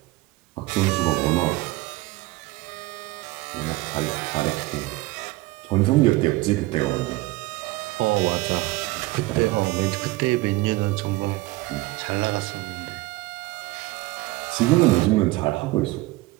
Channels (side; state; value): left; quieter; 20.1 dB